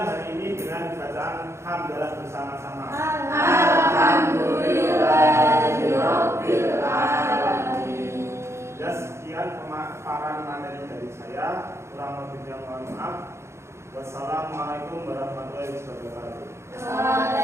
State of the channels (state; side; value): late; left; 0.13 ms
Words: hari ini dengan bacaan hamdalah bersama-sama. Alhamdulillahirabbil alamin. Ya, sekian pemaparan materi dari saya. Kurang lebihnya mohon maaf. Wassalamualaikum warahmatullahi wabarakatuh.